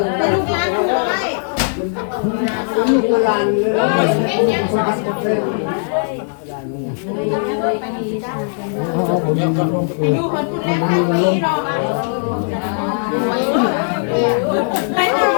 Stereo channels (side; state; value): right; silent; 60 dB below the other